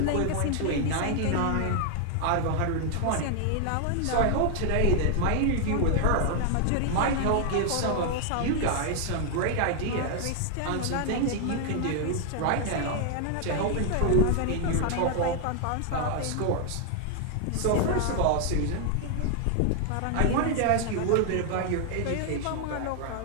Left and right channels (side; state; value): both; different; correlation 0.00